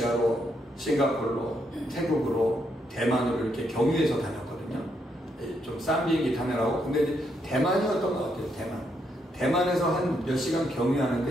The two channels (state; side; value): normal; both; correlation 0.77